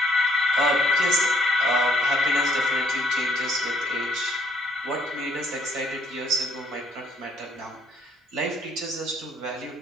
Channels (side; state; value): both; normal; correlation 0.66